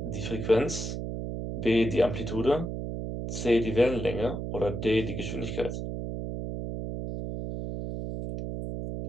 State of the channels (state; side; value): noise; right; hum, 5 dB below the sound